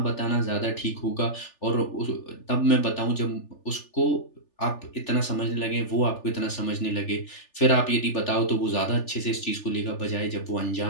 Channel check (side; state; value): right; late; 3.4 ms